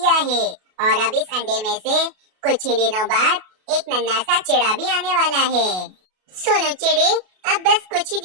है और अब इस अंडे में से कुछ ही दिनों बाद एक नन्हा सा चिड़ा भी आने वाला है। सोनू चिड़े, अब बस कुछ ही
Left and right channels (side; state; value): left; late; 33 ms